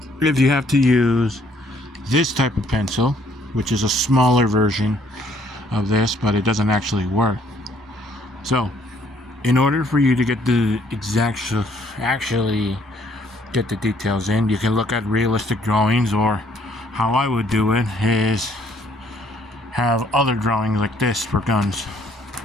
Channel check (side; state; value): both; normal; correlation 0.64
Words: If you have to use this type of pencil, which is a smaller version of this, but it doesn't actually work. So, in order for you to get the actually get the details in, you can look at realistic drawings, or how I would do it is have other drawings like this for guns.